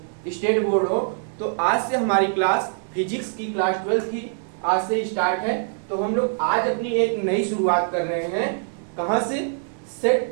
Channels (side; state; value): left; silent; digital silence